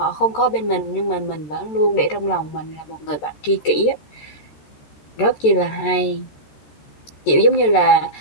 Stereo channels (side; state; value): right; late; 13 ms